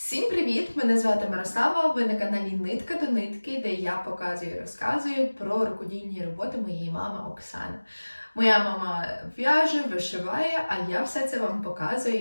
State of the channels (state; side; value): inverted; both; correlation -1.00